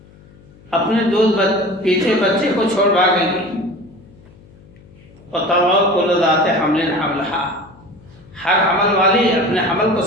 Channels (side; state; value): left; noise; hum, 25 dB below the sound